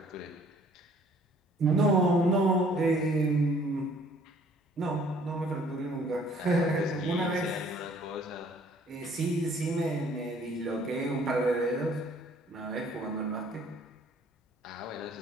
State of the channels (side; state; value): both; normal; correlation 0.58